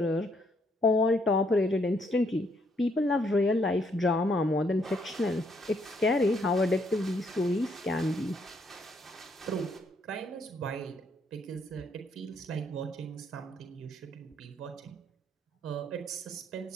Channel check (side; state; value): both; normal; correlation 0.71